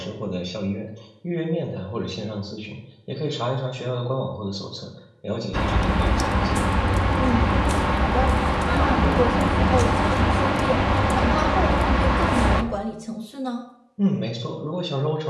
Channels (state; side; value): identical; both; correlation 1.00